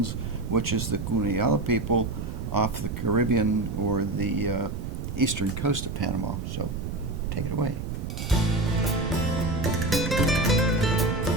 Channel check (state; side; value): noise; right; rumble, 5 dB below the sound